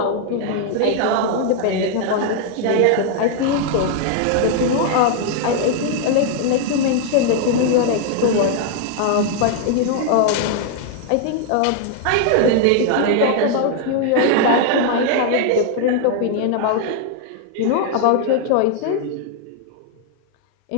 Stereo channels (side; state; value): both; different; correlation 0.00